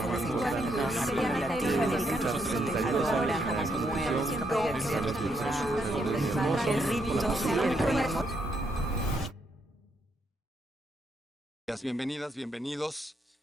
el rito siempre. Bienvenidas, bienvenidos.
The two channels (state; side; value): normal; both; correlation 0.77